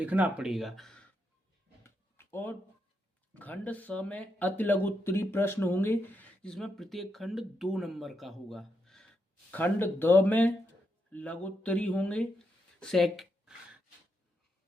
पड़ेगा। और खंड स में अति लघु उत्तरी प्रश्न होंगे, जिसमें प्रत्येक खंड 2 नंबर का होगा। खंड द में लघु उत्तरी होंगे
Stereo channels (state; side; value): normal; both; correlation 0.82